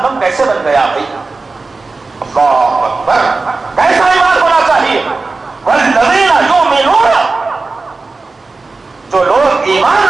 کیسے بن گیا بھائی؟ اللہ اکبر، کیسا ایمان ہونا چاہیے؟ والذین یؤمنون، جو لوگ ایمان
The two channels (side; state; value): left; quieter; 3.8 dB